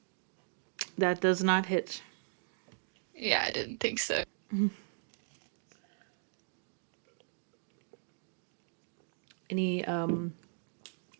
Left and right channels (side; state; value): left; silent; digital silence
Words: That does not hit. Yeah, I didn't think so. Any